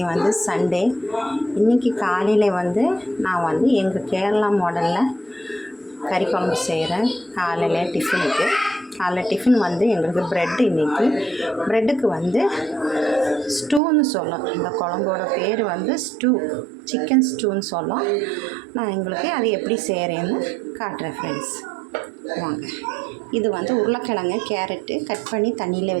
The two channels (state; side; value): drops out; left; at 13.8 s